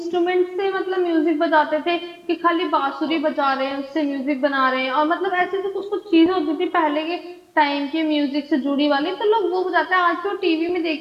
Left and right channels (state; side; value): identical; both; correlation 1.00